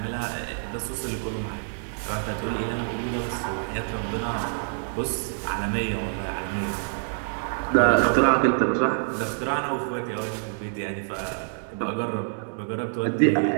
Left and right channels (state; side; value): silent; left; digital silence